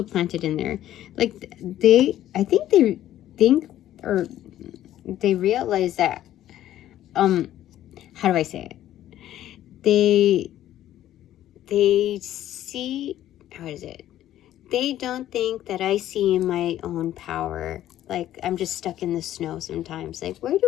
planted in there. Like, I think they think, or they realize that, how do I say it? They see, how is it? They don't think that I see my own power. Like, I'm just stuck in the snow sometimes. Like, where did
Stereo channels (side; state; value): right; quieter; 12.7 dB